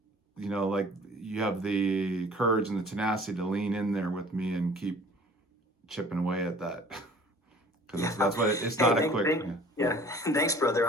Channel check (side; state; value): both; normal; correlation 0.50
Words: like you have the courage and the tenacity to lean in there with me and keep chipping away at that. Because that's what it's not a quick. Yeah. Thanks, brother.